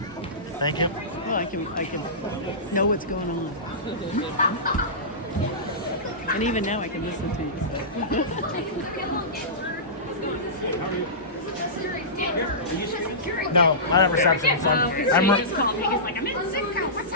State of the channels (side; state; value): both; normal; correlation -0.20